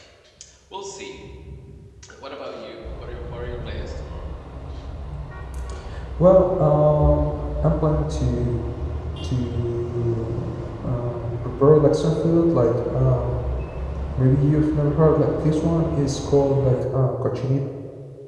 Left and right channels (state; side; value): identical; both; correlation 1.00